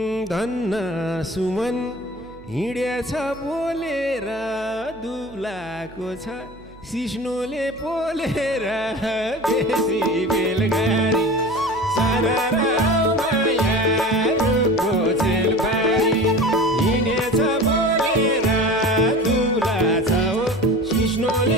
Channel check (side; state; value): right; noise; hum, 21 dB below the sound